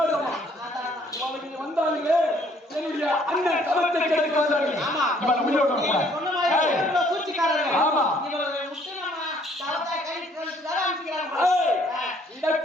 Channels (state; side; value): normal; both; correlation 0.62